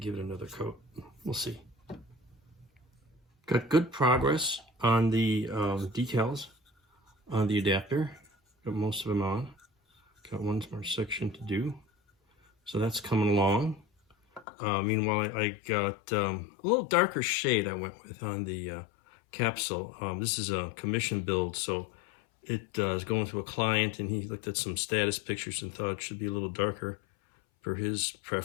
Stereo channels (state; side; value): drops out; right; at 14.5 s